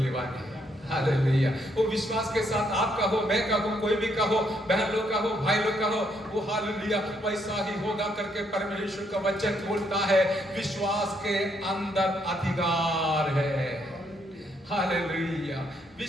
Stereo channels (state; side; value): normal; both; correlation 0.73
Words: है. हालेलुया. वो विश्वास के साथ आप कहो, मैं कहूँ, कोई भी कहो, बहन लोग कहो, भाई लोग कहो, वो हालेलुया वैसा ही होगा करके परमेश्वर का वचन बोलता है. विश्वास के अंदर अधिकार है. हालेलुया.